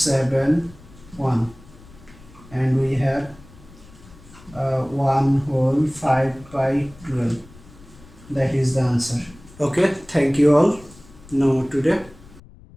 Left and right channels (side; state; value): left; noise; rumble, 22 dB below the sound